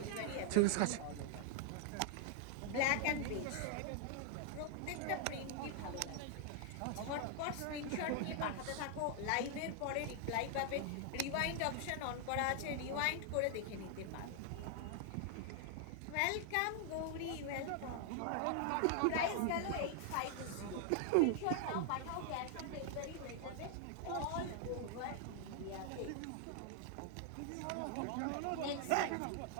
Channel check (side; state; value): both; different; correlation 0.00